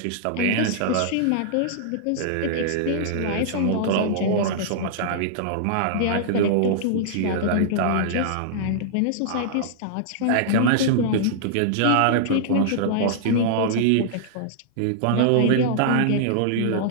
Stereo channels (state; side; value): different; both; correlation -0.01